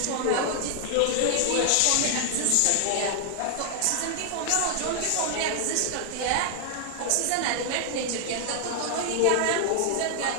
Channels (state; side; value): different; both; correlation 0.00